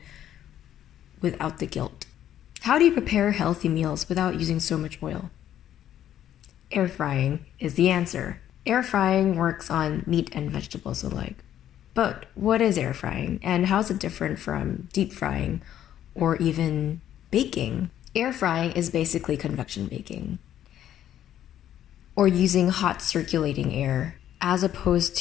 without the guilt? How do you prepare healthy meals without using so much oil? Air frying is the answer. Air frying works on meat and vegetables alike. But what is air frying, and how is it different from deep frying or even baking? Air frying is basically convection baking, or using hot circulating air, as opposed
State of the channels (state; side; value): quieter; right; 11.2 dB